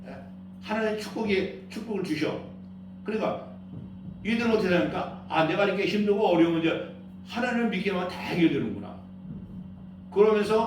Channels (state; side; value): identical; both; correlation 1.00